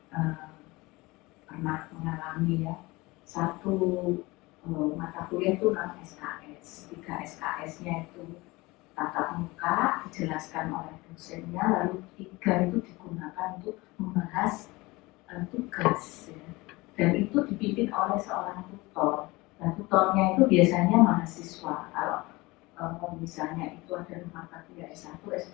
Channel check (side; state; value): right; quieter; 22.2 dB